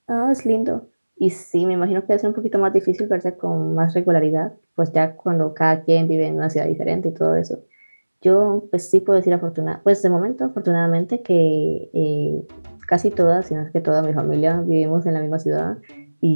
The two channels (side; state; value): both; inverted; correlation -1.00